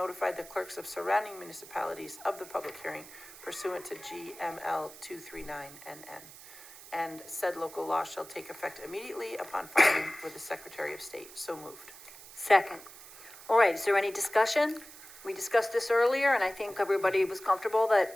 the clerks of surrounding municipalities of the public hearing pursuant to GML 239NN. And said local law shall take effect immediately upon filing with the Secretary of State. So moved. Second. All right, is there any discussion? We discussed this earlier, and I think everybody was comfortable that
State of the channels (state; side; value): noise; right; hiss, 17 dB below the sound